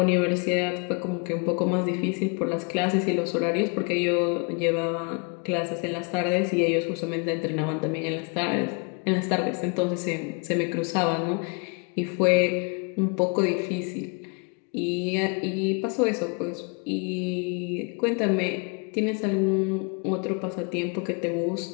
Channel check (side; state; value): right; quieter; 35.4 dB